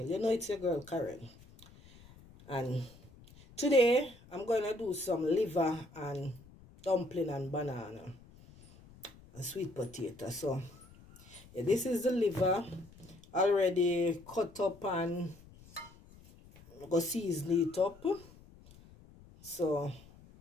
You know it's your girl Karen, and today I'm going to do some liver and dumpling and banana and sweet potato. So yeah, this is the liver already cut up and go season it up. So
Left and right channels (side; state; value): left; noise; rumble, 23 dB below the sound